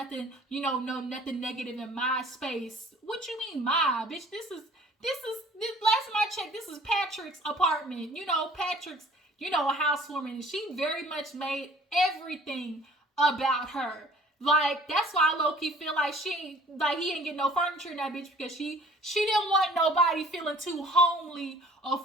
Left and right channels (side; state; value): both; normal; correlation 0.53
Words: nothing negative in my space. What you mean my? Bitch, this last time I checked, this is Patrick's apartment. Patrick's, a housewarming. And she very much made everything about her. Like, that's why I low-key feel like he ain't get no furniture in that bitch, because she didn't want nobody feeling too homely or